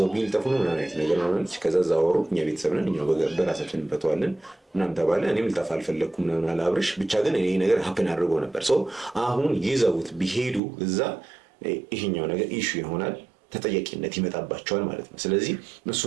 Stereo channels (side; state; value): left; drops out; at 10.6 s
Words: ቢልጠፉ ነው ምናምን አይነት ነገር ማለች። ከዛ ዛወሩ እኛ ቤተሰብ ነን እኛው በራሳችን እንፈተዋለን ምናምን ተባለ። እኔም ልጠፋ አልፈለግኩም ምናምን አለ አብርሽ። ብቻ ግን ይሄ ነገር ሀፕን አድርጎ ነበር። አሁን ይዘውት ቢሄዱ እዛ ይሄኛው ነገር ኢሹ ይሆናል፣ ተጠያቂነት ይመጣባቸዋል ማለት ነው። ስለዚህ